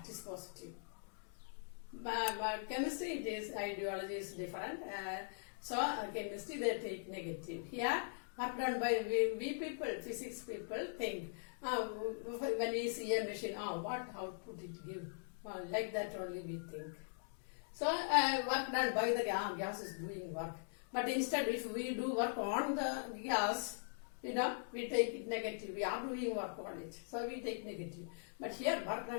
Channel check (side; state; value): right; silent; digital silence